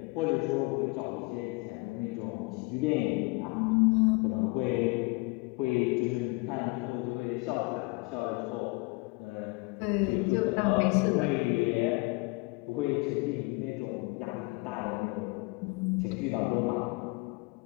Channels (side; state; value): right; quieter; 27.0 dB